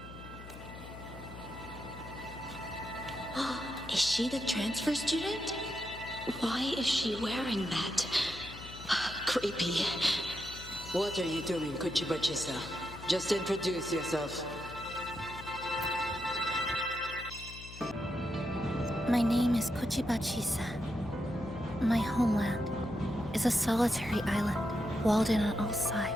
Is she the transfer student? Why is she wearing that? Creepy. What are you doing, Kuchiba-chisa? Just introduce yourself. My name is Kuchiba-chisa. My homeland is a solitary island, walled in on all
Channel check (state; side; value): noise; left; hum, 14 dB below the sound